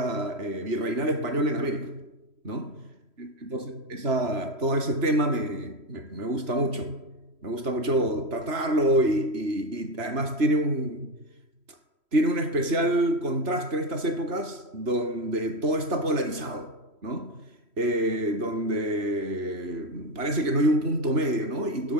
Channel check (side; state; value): left; late; 3.1 ms